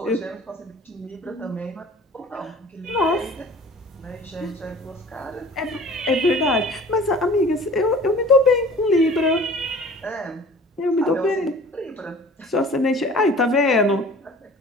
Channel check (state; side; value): normal; both; correlation 0.46